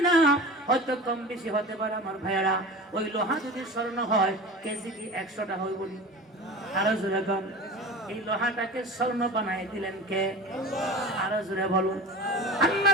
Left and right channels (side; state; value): both; normal; correlation 0.35